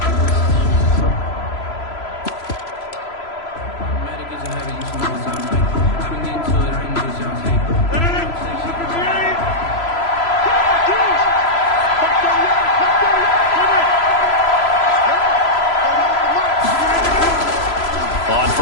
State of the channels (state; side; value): late; right; 3.0 ms